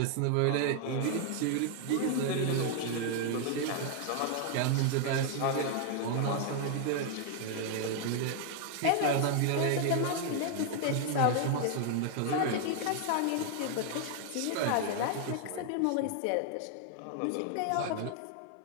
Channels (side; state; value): both; different; correlation 0.00